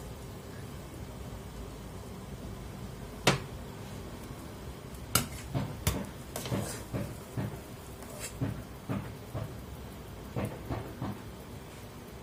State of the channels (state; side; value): identical; both; correlation 1.00